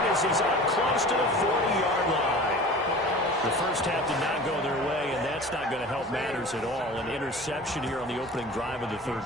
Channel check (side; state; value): both; normal; correlation 0.39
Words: as he's up close to the 40-yard line. The first half did not go their way, and that's not going to help matters at all. An interception here on the opening drive of the third